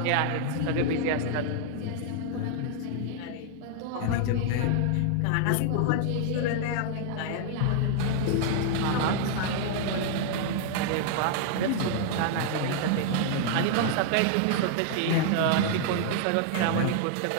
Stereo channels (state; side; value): different; both; correlation -0.01